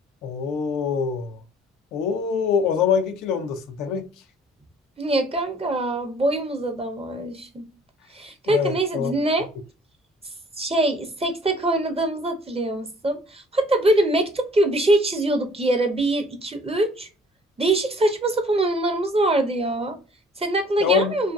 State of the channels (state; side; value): normal; both; correlation 0.55